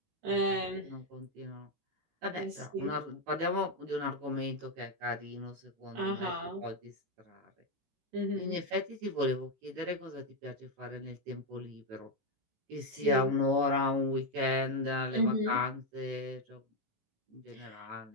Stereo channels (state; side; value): late; left; 18 ms